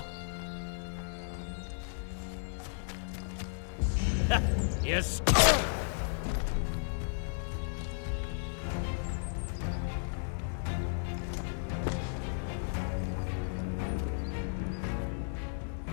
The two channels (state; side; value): silent; right; digital silence